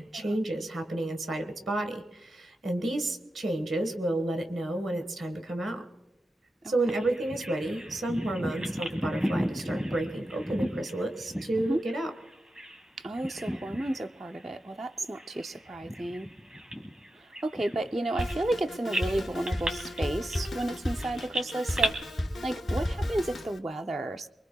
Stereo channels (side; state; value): both; normal; correlation 0.90